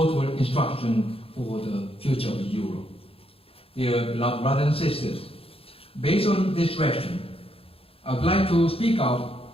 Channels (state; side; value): late; right; 0.27 ms